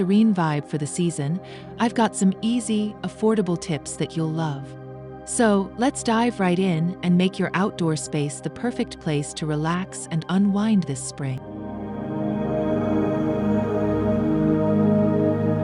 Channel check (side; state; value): both; identical; correlation 1.00